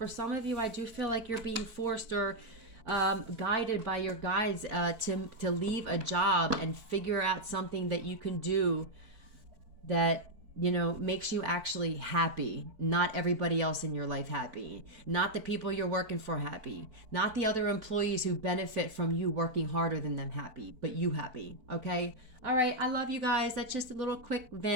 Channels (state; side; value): late; left; 4.5 ms